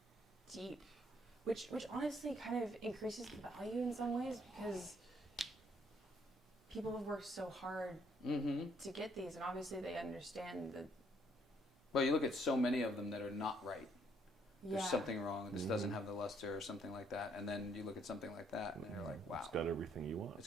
deep, which honestly kind of increases the value in some ways because people have worked so hard Mm-hmm. to get these, and obviously they understand that. Well, you look at so many of them that are not right. Yeah. There's something wrong. This Mhm. doesn't have the luster or something like that. And then you look at something like that, and you're like, wow. It's got everything you want. It's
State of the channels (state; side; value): normal; both; correlation 0.68